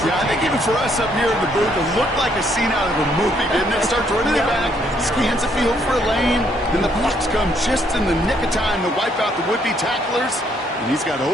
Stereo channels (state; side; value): normal; both; correlation 0.69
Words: Yeah, I think even for us up here in the booth, it looked like a scene out of a movie, didn't it? Starts running it back, scans the field for a lane, then the blocks come just in the nick of time to wipe out the would-be tacklers, and he's got